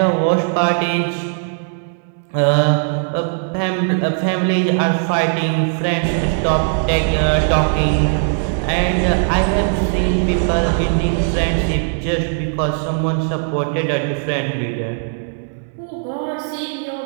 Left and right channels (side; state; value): left; silent; digital silence